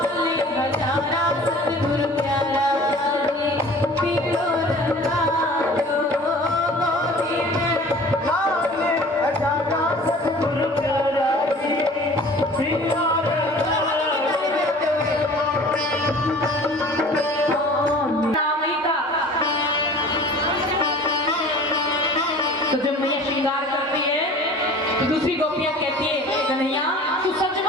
तो जब मैया श्रृंगार करती है तो दूसरी गोपियां कहती है कन्हैया तू सच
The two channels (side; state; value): both; normal; correlation 0.45